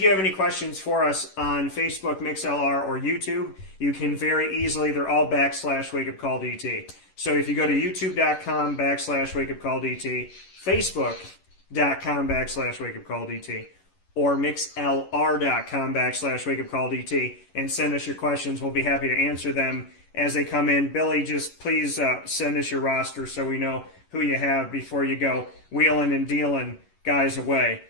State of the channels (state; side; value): late; right; 11 ms